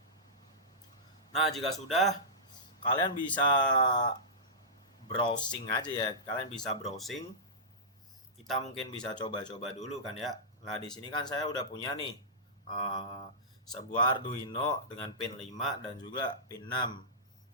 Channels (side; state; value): both; normal; correlation -0.16